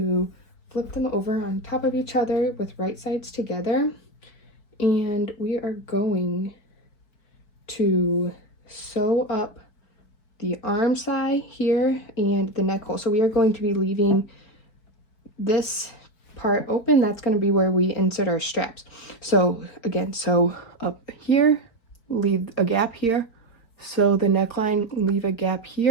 flip them over on top of each other with right sides together, and we are going to sew up the arm side here and the neck hole. So we are going to be leaving this part open. That's going to be where we insert our straps. So again, sew up here, leave a gap here, sew the neckline, leave a gap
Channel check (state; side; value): late; right; 4.6 ms